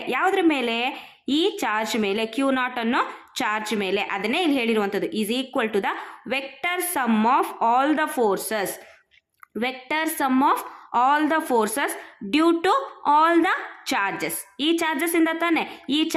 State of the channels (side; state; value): both; identical; correlation 1.00